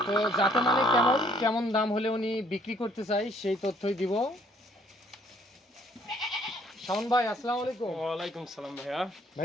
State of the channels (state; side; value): normal; both; correlation 0.63